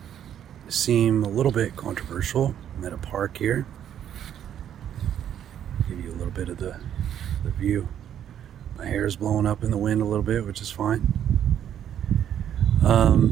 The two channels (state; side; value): quieter; left; 10.0 dB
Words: seem a little bit controversial. I'm at a park here. Give you a little bit of the view. My hair is blowing up in the wind a little bit, which is fine.